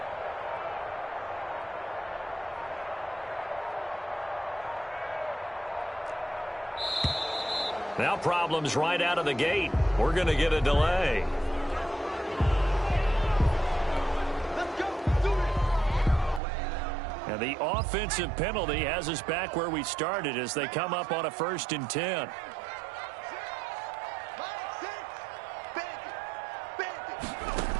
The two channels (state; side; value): drops out; left; at 16.4 s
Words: Now problems right out of the gate. We're going to get a delay. And the offensive penalty has us back where we started as they come up on a 1st and 10.